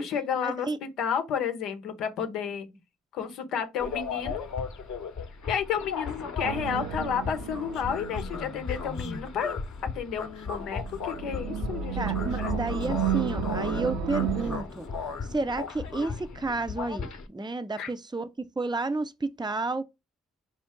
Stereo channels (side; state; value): both; normal; correlation 0.48